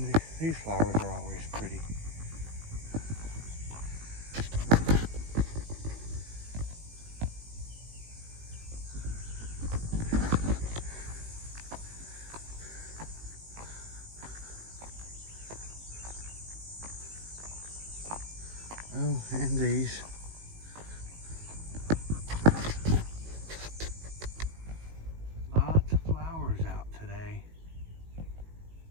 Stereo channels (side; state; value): left; late; 18 ms